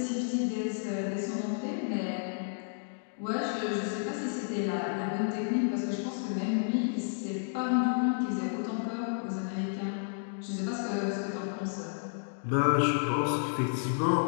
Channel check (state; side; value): silent; right; digital silence